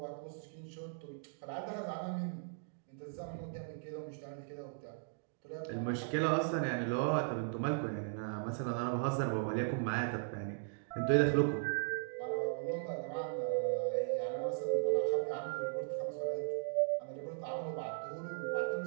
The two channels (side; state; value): left; silent; digital silence